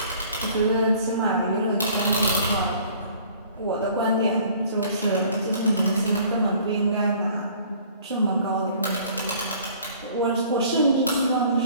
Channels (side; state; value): both; inverted; correlation -0.53